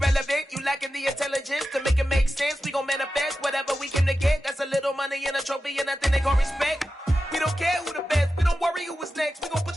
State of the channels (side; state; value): both; normal; correlation 0.92